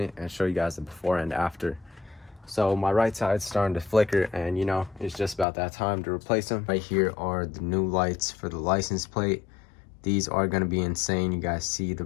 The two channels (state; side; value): drops out; right; at 5.5 s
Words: and show you guys the before and after. So my right side's starting to flicker, and you know, it's just about that time to replace them. Right here are the new lights for the license plate. These are going to be insane. You guys see the